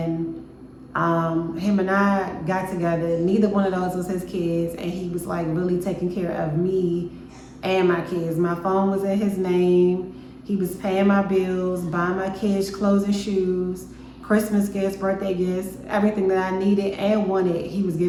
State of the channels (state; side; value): identical; both; correlation 1.00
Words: him and I got together. Neither one of those was his kids, and he was like really taking care of me and my kids. My phone was in his name. He was paying my bills, buying my kids clothes and shoes, Christmas gifts, birthday gifts, everything that I needed and wanted, he was